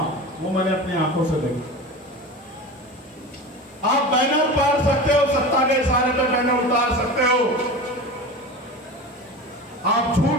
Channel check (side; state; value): both; normal; correlation 0.30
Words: वो मैंने अपनी आंखों से देखा। आप बैनर पार सकते हो, सत्ता के इशारे पे बैनर उतार सकते हो, आप